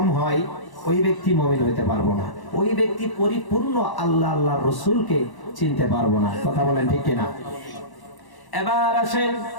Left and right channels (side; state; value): right; late; 1.0 ms